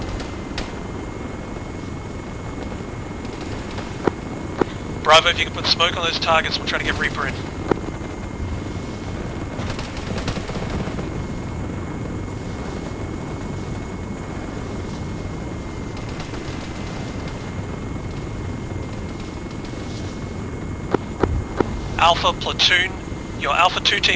Bravo, if you can put smoke on those targets, we'll try to get Reaper in. Alpha platoon, your Alpha 2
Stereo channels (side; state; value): both; identical; correlation 1.00